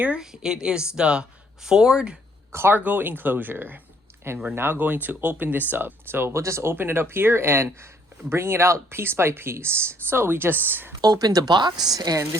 It is the Ford cargo enclosure, and we're now going to open this up. So we'll just open it up here and bring it out piece by piece. So we just opened the box, and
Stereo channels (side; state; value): both; normal; correlation 0.65